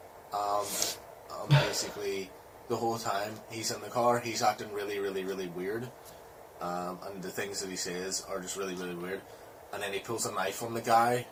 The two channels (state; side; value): identical; both; correlation 1.00